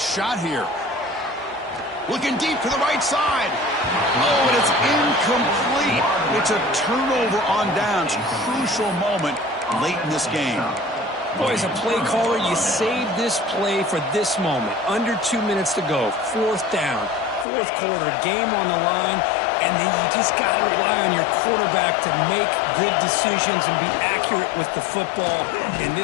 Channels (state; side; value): drops out; right; at 17.4 s